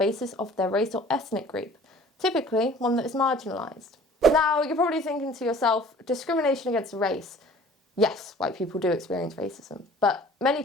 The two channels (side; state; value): both; normal; correlation 0.49